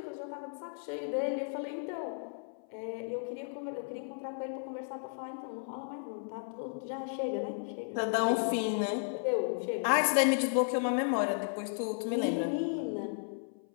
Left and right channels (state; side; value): silent; right; 55 dB below the other